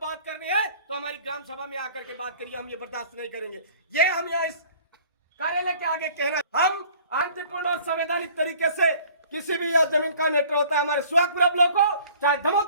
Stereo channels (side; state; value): both; inverted; correlation -0.51